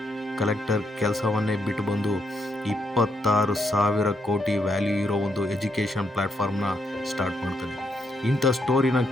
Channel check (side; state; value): both; normal; correlation 0.77